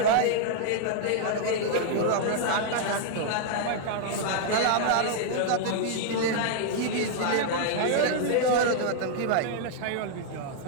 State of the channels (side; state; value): both; different; correlation -0.01